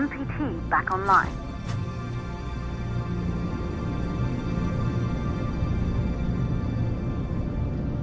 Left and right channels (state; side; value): identical; both; correlation 1.00